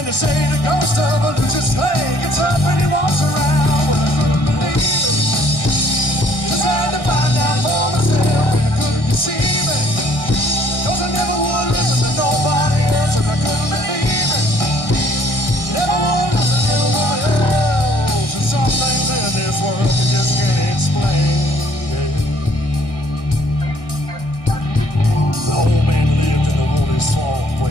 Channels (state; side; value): late; right; 1.6 ms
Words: they say the ghost of a loose slave gets up and he walks around. Well, I couldn't believe it. Just had to find out for myself, and I couldn't deceive it. Cause I never would listen to nobody else, and I couldn't believe it. Never would listen to anyone else. And some things in this world you just can't explain. The old man lived in the Wooley swamp